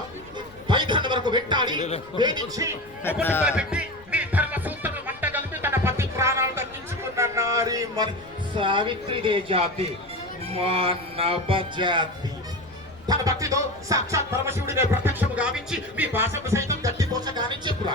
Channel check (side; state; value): left; noise; rumble, 24 dB below the sound